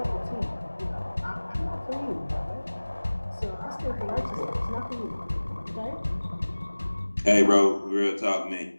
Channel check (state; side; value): inverted; both; correlation -1.00